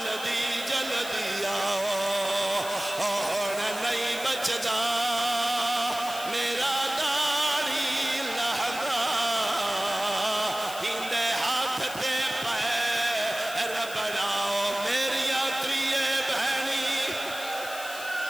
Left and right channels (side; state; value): left; noise; hiss, 12 dB below the sound